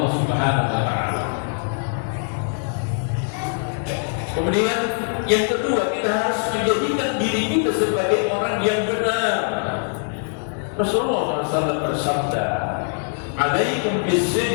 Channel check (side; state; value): right; silent; digital silence